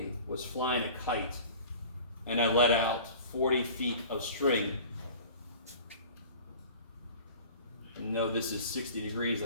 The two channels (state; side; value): inverted; both; correlation -0.42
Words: was flying a kite and I let out 40 feet of string, and know this is 60 degrees,